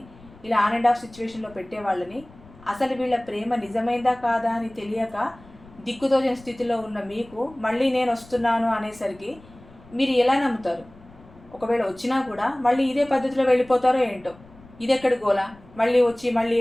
ఇలా ఆన్ అండ్ ఆఫ్ సిచ్యువేషన్లో పెట్టే వాళ్ళని, అసలు వీళ్ళ ప్రేమ నిజమైందా కాదా అని తెలియక దిక్కుతోచని స్థితిలో ఉన్న మీకు మళ్ళీ నేను వస్తున్నాను అనేసరికి మీరు ఎలా నమ్ముతారు? ఒకవేళ వచ్చినా కూడా మళ్ళీ ఇదే పద్ధతిలో వెళ్ళిపోతారో ఏంటో. ఇది ఎక్కడి గోలా? మళ్ళీ వచ్చి మళ్ళీ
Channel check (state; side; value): noise; left; rumble, 23 dB below the sound